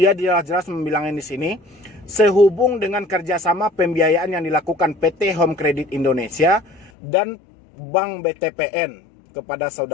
jelas-jelas membilangin di sini, sehubung dengan kerjasama pembiayaan yang dilakukan PT Home Credit Indonesia dan Bank BTPN kepada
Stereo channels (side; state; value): right; drops out; at 6.9 s